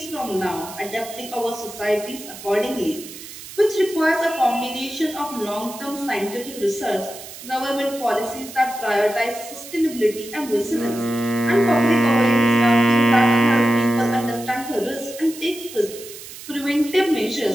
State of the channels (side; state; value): right; noise; hiss, 14 dB below the sound